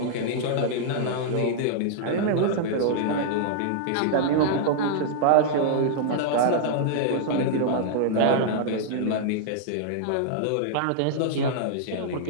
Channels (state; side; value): different; both; correlation -0.01